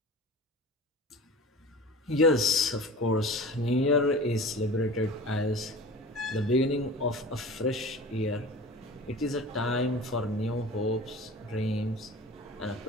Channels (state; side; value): normal; both; correlation 0.37